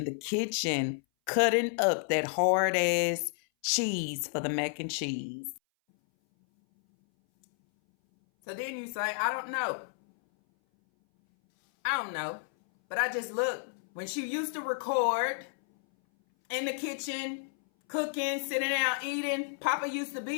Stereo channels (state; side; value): silent; right; 57 dB below the other